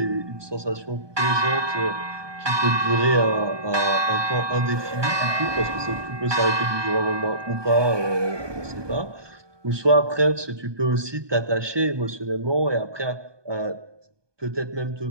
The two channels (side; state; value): left; late; 1.2 ms